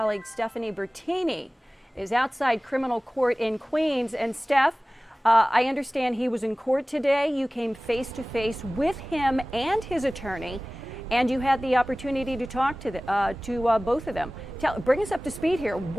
Stephanie Bertini is outside criminal court in Queens. And Steph, I understand he was in court today. You came face to face with him and his attorney, and you had the opportunity to talk to both of them. Bring us up to speed here.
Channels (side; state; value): both; normal; correlation 0.98